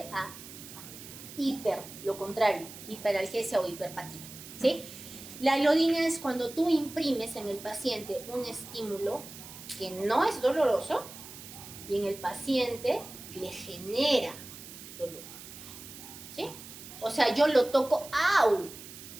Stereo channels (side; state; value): right; noise; hiss, 14 dB below the sound